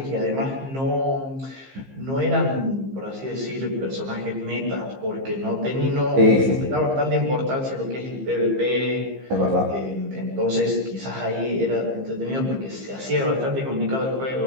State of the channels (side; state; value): left; late; 15 ms